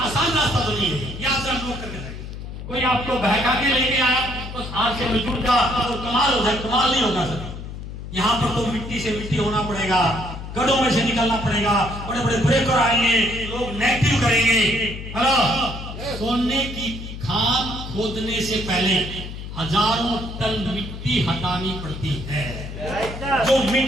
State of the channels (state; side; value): noise; left; hum, 9 dB below the sound